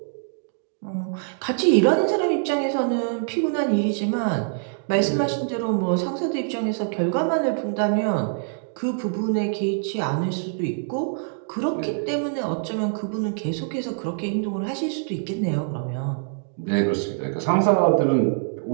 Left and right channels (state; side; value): silent; left; digital silence